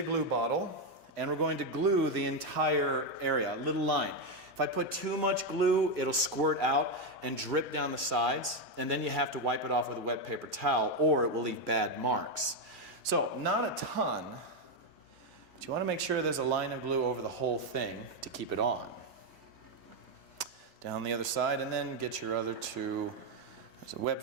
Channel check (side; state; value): both; normal; correlation 0.05